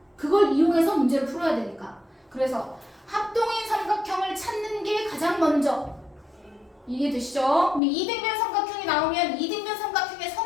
그걸 이용해서 문제를 풀어야 되니까. 그래서 합동인 삼각형을 찾는 게 가장 먼저. 이해되시죠? 그럼 이등변 삼각형이 나오면 이등변 삼각형의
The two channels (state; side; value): drops out; right; at 7.8 s